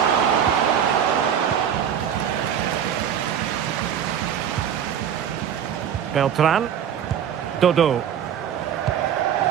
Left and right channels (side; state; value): left; quieter; 9.0 dB